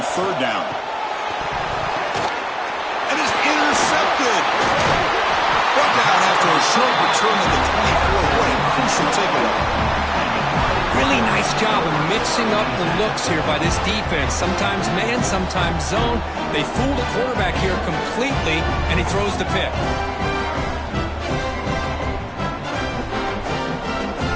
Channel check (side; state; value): both; identical; correlation 1.00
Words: 3rd down. And is intercepted. Brought down after a short return of the 24. What a crucial takeaway. Really nice job of mixing up the looks here by this defense. Sometimes man, sometimes zone. They fool the quarterback here completely, and he throws the pick.